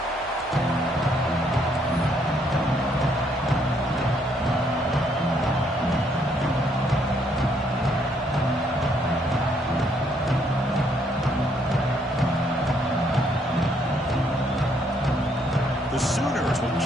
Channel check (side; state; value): both; normal; correlation 0.70